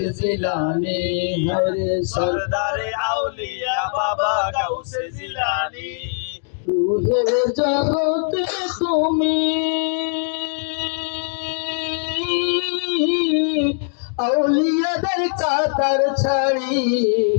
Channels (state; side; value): silent; right; digital silence